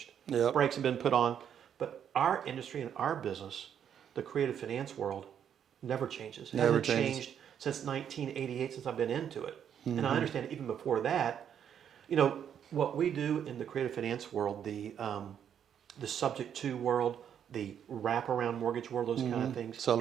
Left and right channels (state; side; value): quieter; left; 8.8 dB